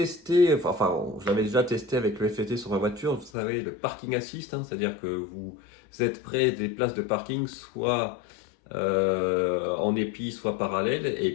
enfin je l'avais déjà testé avec le FET sur ma voiture, vous savez le parking assist, c'est-à-dire que vous êtes près des places de parking, soit en épi, soit parallèle,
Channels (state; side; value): drops out; right; at 3.3 s